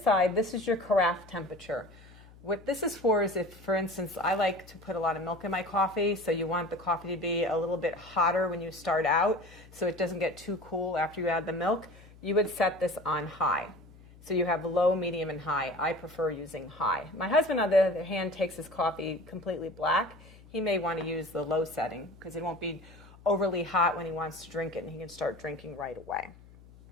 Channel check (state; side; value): noise; left; hum, 22 dB below the sound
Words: side, this is your carafe temperature. What this is for is if, for instance, I like to put a lot of milk in my coffee, so you want the coffee to be a little bit hotter when you start out so it doesn't get too cool after you add the milk, you would set this on high. So you have low, medium, and high. I prefer using high. My husband, on the other hand, takes his coffee completely black. He may want to use the low setting because it won't be overly hot when he wants to drink it, and he can start drinking right away.